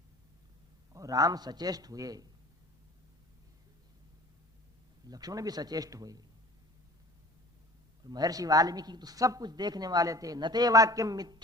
और राम सचेष्ट हुए, लक्ष्मण भी सचेष्ट हुए। महर्षि वाल्मीकि तो सब कुछ देखने वाले थे। नते वाक्यम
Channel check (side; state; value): both; normal; correlation 0.45